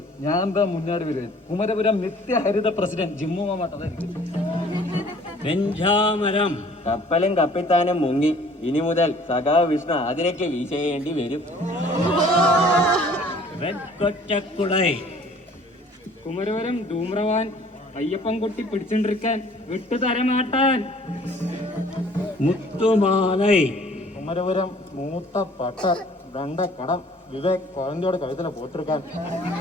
ഞാൻ എന്താ മുന്നാടി വരുവൻ. കുമരപുരം നിത്യഹരിത പ്രസിഡന്റ് ജിമ്മു മാമാട്ടതായിരിക്കും. വെഞ്ചാമരം. കപ്പലും കപ്പിത്താനും മുങ്ങി, ഇനി മുതൽ സഖാവ് വിഷ്ണു അതിനൊക്കെ വീശേണ്ടി വരും. വെക്കൊറ്റക്കുടൈ. കുമരവരം ധൂമ്രവാൻ അയ്യപ്പൻ കുട്ടി പിടിച്ചോണ്ടിരിക്കാൻ വിട്ടുതരമാട്ടാൻ. മുത്തുമാലൈ. കുമരപുരം മൂത്ത പട്ടർ കടം വിവേക് കുഴന്തയോട് കഴുതല പോത്തിരിക്കാൻ.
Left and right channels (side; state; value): both; normal; correlation 0.54